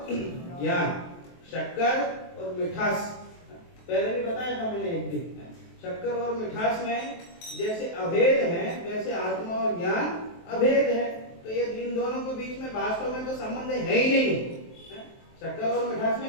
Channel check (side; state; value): right; late; 23 ms